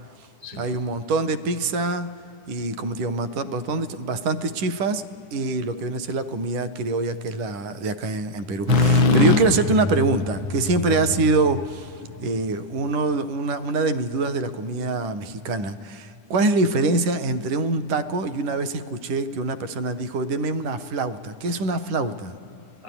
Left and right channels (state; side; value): late; left; 10 ms